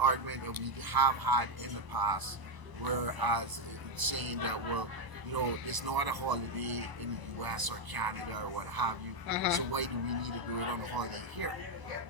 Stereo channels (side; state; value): left; late; 1.0 ms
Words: that we have had in the past, whereas it's saying that it's not a holiday in the US or Canada or what have you, so why do we need to do it on a holiday here?